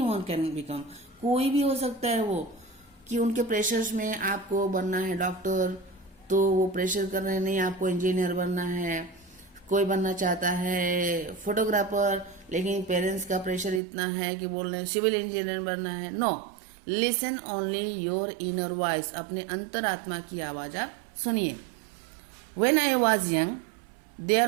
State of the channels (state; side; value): drops out; left; at 13.8 s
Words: can become, कोई भी हो सकता है वो, कि उनके प्रेशर्स में आपको बनना है डॉक्टर, तो वो प्रेशर कर रहे हैं, नहीं आपको इंजीनियर बनना है। कोई बनना चाहता है फोटोग्राफर, लेकिन पेरेंट्स का प्रेशर इतना है कि बोल रहे हैं सिविल इंजीनियर बनना है। No, listen only your inner voice, अपने अंतरात्मा की आवाज आप सुनिए। When I was young